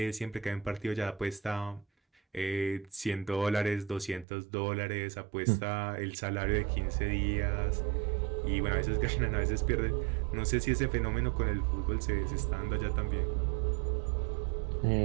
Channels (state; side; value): drops out; left; at 4.2 s